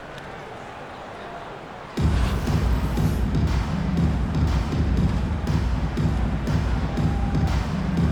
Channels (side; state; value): both; identical; correlation 1.00